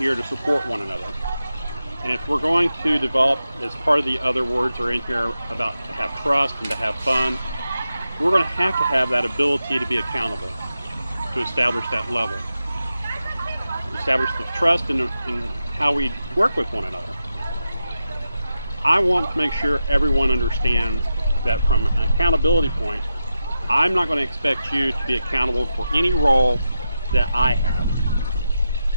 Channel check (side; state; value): both; inverted; correlation -0.89